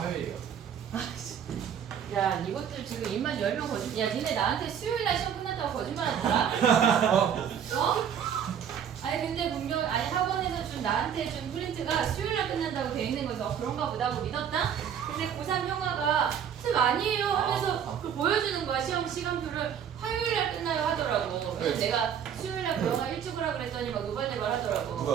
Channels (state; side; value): quieter; left; 8.4 dB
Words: 화요일이요. 야, 이것들 지금 입만 열면 거짓말. 야, 니네 나한테 수요일날 시험 끝났다고 거짓말하더라? 어? 아니 근데 분명 아니 학원에서 준 나한테 준 프린트가 수요일날 끝난다고 돼 있는 거죠. 그런가 보다 하고 믿었다. 근데 고3 형아가 쌤 아니에요 하면서 그걸 보여주는 거야. 시험 시간표를 화요일날 끝나요 하더라고. 그래서 내가 수요일날 그런가 일찍 오라 그랬더니 막 노발대발